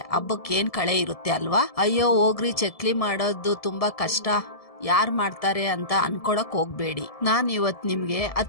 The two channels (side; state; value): right; late; 1.7 ms